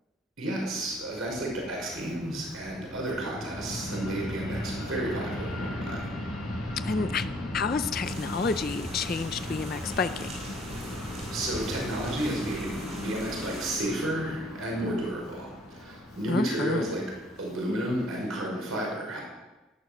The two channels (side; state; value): both; normal; correlation 0.59